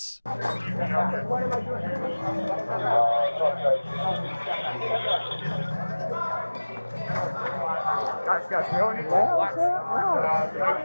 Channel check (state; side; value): inverted; both; correlation -1.00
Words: Guys, we don't need to.